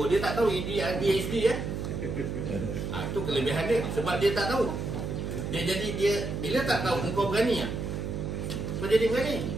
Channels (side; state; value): right; noise; hum, 4 dB below the sound